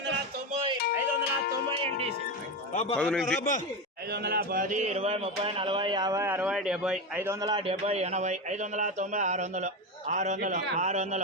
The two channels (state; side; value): normal; both; correlation 0.16